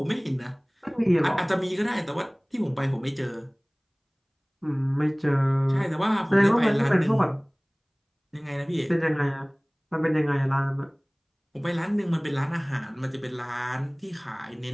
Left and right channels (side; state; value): both; identical; correlation 1.00